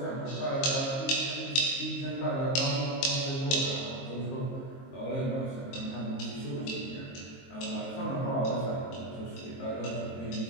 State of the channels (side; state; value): right; late; 22 ms